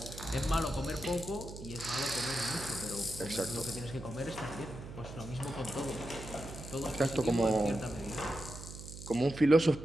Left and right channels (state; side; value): noise; right; hum, 12 dB below the sound